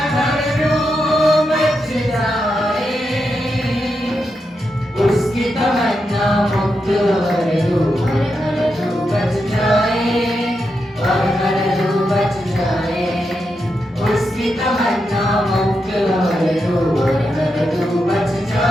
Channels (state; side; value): normal; both; correlation 0.85